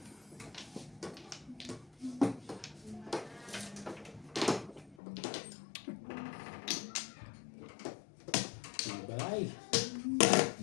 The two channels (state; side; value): drops out; right; at 5.0 s